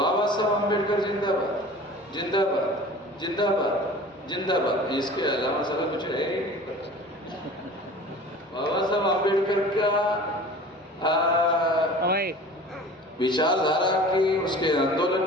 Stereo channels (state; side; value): normal; both; correlation 0.42